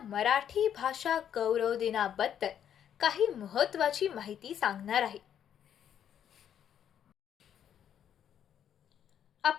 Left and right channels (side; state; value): right; quieter; 9.4 dB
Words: भाषा गौरव दिनाबद्दल काही महत्त्वाची माहिती सांगणार आहे.